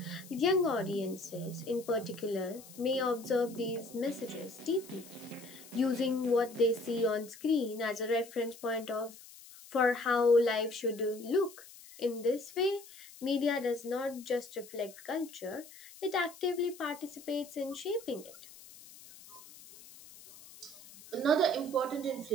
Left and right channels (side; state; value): left; noise; hiss, 19 dB below the sound